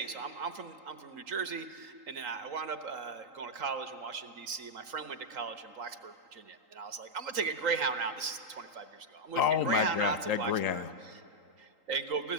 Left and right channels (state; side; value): late; left; 3.8 ms